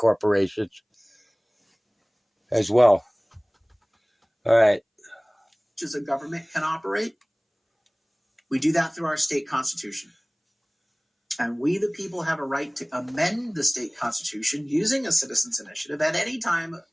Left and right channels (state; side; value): identical; both; correlation 1.00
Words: as well. All right. As a government can operate. We do that through our state constitution. And we, the people, have a right to amend the state constitution using a citizens' initiative at any time